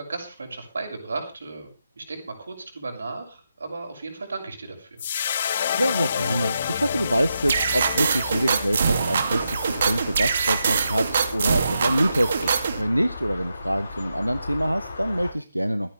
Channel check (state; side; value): inverted; both; correlation -0.86